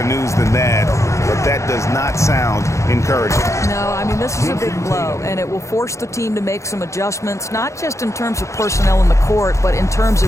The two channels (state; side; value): late; right; 0.14 ms